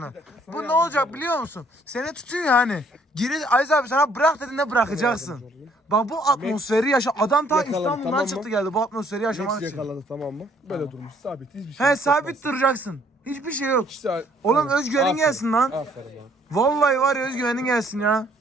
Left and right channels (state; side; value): normal; both; correlation 0.63